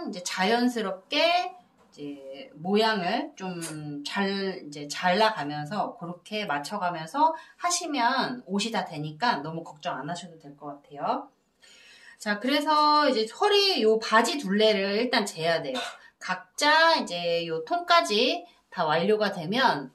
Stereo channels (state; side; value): identical; both; correlation 1.00